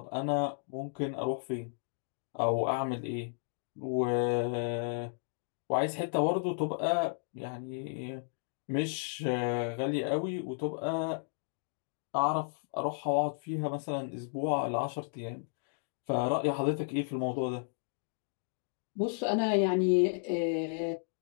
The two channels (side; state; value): right; silent; digital silence